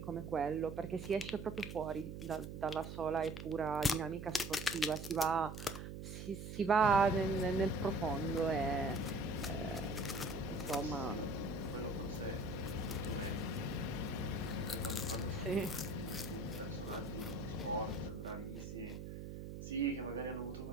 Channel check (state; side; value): noise; right; hum, 8 dB below the sound